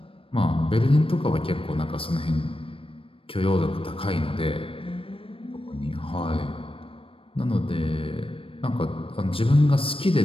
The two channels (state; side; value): late; right; 0.26 ms